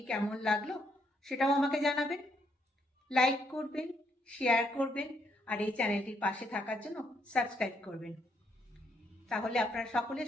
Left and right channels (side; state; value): both; normal; correlation 0.74